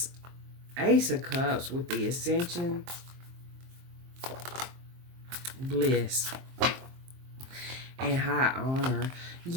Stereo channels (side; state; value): left; late; 23 ms